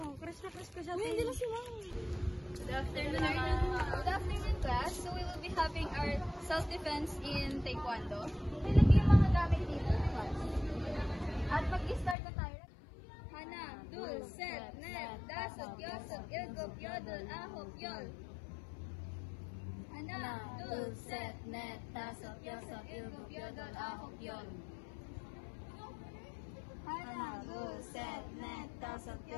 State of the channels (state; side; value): drops out; right; at 12.2 s